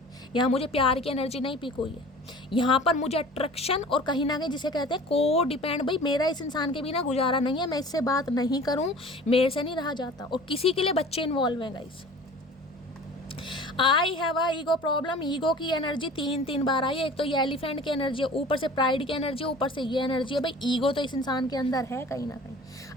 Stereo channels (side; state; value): both; normal; correlation 0.43